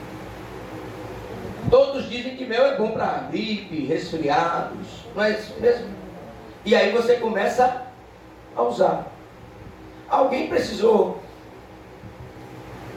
Todos dizem que mel é bom para gripe, resfriados, não é isso mesmo? E aí você começa a usar. Alguém precisou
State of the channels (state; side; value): identical; both; correlation 1.00